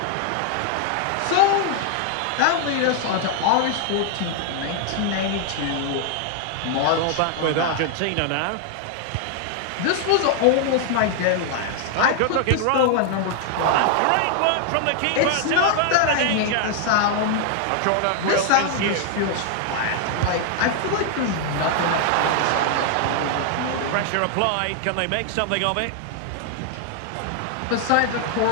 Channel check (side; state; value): both; different; correlation 0.00